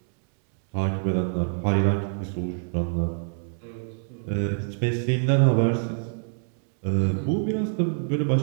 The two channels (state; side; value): silent; left; digital silence